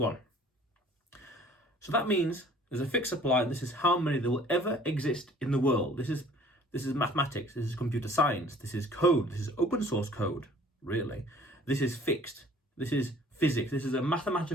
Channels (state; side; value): normal; both; correlation 0.52